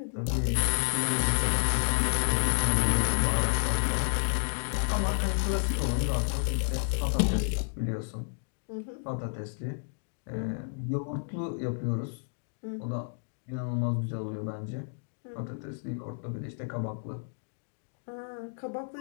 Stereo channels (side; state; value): right; silent; digital silence